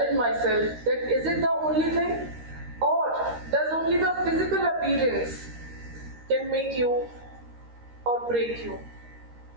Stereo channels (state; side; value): late; left; 13 ms